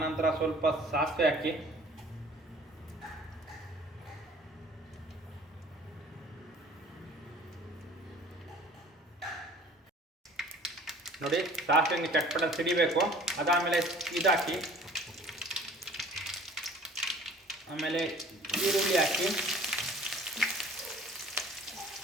ಸ್ವಲ್ಪ ಸಾಸಿವೆ ಹಾಕಿ, ನೋಡಿ ಸಾಸಿವೆ ಚಟ್ಪಟ ಸಿಡಿಬೇಕು. ಅದಾದಮೇಲೆ ಇದಾಕಿ, ಆಮೇಲೆ ಈರುಳ್ಳಿ ಹಾಕಿ,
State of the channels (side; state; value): both; normal; correlation 0.49